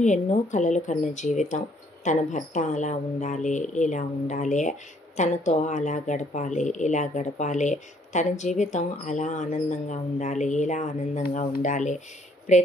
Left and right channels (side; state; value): both; normal; correlation 0.65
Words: ఎన్నో కలలు కన్న జీవితం. తన భర్త అలా ఉండాలి, ఇలా ఉండాలి, తనతో అలా గడపాలి, ఇలా గడపాలి, తన జీవితం అలా ఆనందంగా ఉండాలి, ఇలా ఆనందంగా ఉండాలి.